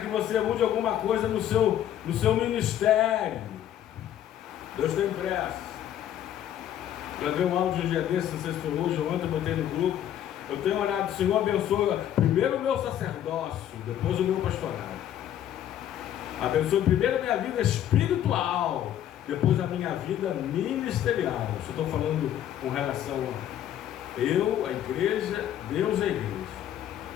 você mude alguma coisa no seu ministério. Deus tem pressa. Eu vi um áudio um dia desse, não sei se foi hoje ou ontem, eu botei no grupo. Eu tenho orado, Senhor abençoa primeiro o meu sacerdócio, depois o meu pastorado. Abençoe primeiro a minha vida espiritual, depois a minha vida ministerial. Isso eu estou falando com relação a eu, a igreja, Deus, a igreja.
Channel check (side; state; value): right; quieter; 11.0 dB